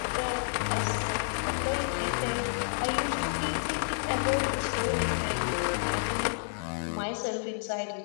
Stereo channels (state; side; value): silent; right; 58 dB below the other